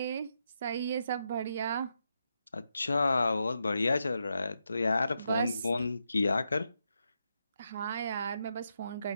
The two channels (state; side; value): inverted; both; correlation -0.83